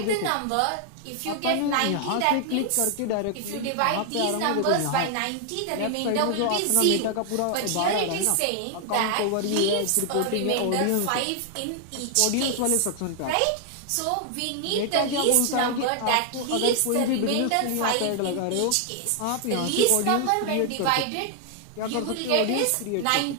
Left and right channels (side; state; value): both; different; correlation 0.00